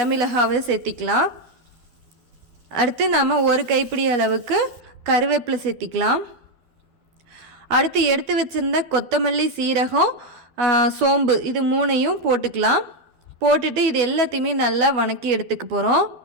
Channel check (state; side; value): late; left; 12 ms